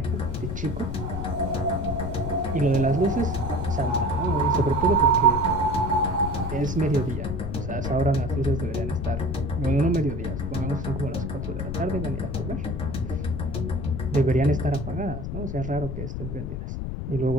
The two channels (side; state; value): left; noise; rumble, 5 dB below the sound